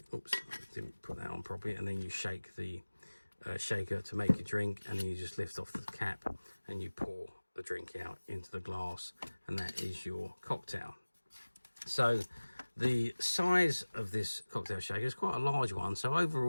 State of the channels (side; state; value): both; inverted; correlation -1.00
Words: oops, I didn't put that on properly, and then you shake the shaker to make your drink, and then you just lift off the cap and you pour the drink out into the glass, and that is your cocktail. So the size of this cocktail shaker is quite a large one. So